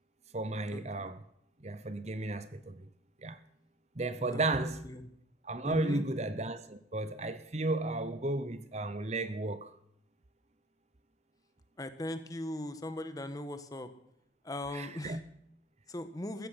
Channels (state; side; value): normal; both; correlation 0.48